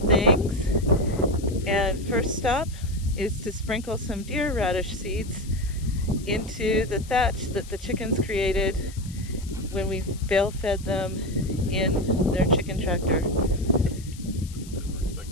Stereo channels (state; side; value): noise; left; hiss, 19 dB below the sound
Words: and first stop is to sprinkle some deer radish seeds into the thatch that the chickens created when we bale fed them in their chicken tractor.